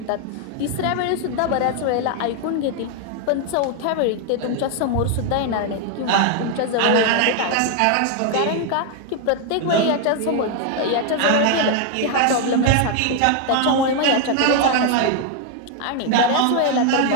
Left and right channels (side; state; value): both; different; correlation 0.01